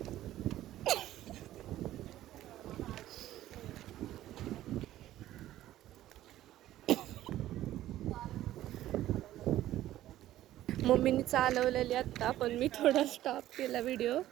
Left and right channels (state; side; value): quieter; left; 13.9 dB